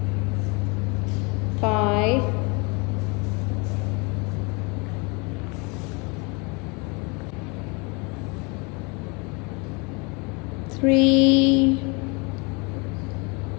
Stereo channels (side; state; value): right; quieter; 30.0 dB